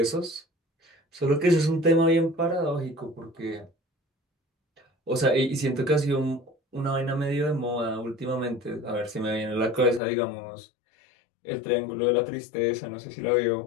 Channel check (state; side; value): drops out; right; at 10.0 s